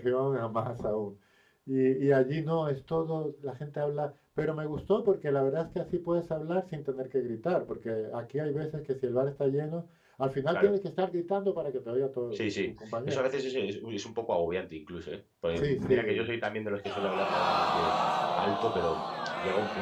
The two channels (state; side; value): identical; both; correlation 1.00